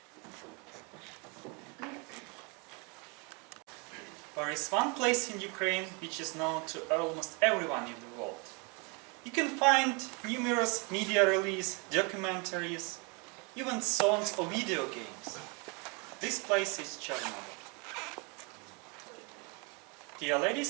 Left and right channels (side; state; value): left; quieter; 31.4 dB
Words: There is one place in Ukraine which is known to almost everyone in the world. You can find numerous media releases, documentaries, even songs or video games. This place is Chernobyl. Dear